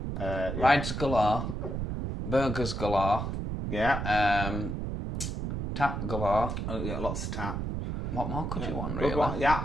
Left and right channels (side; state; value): right; noise; rumble, 3 dB below the sound